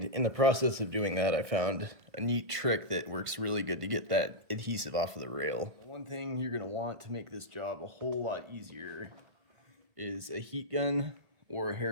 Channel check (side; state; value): left; late; 1.6 ms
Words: in the process of doing that I found a neat trick that works really good to get that adhesive off of the rail. One thing you're going to want to make this job a whole lot easier is a heat gun or a